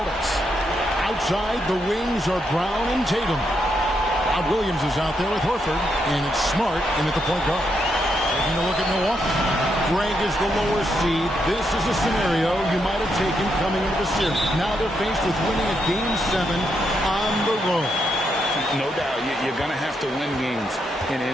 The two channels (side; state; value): both; normal; correlation 0.80